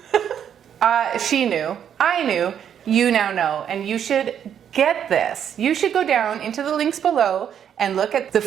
She knew. I knew. You now know. And you should get this. You should go down into the links below and look at the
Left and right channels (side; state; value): left; quieter; 8.9 dB